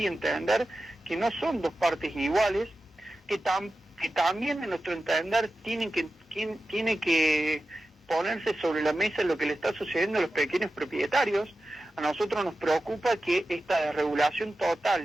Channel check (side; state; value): both; normal; correlation 0.93